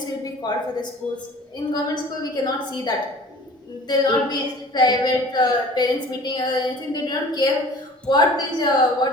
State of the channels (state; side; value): normal; both; correlation 0.46